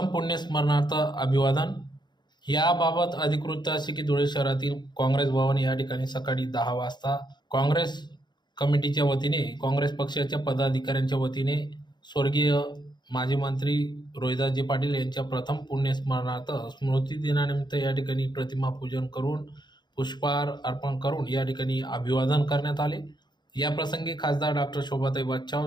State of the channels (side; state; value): right; late; 0.21 ms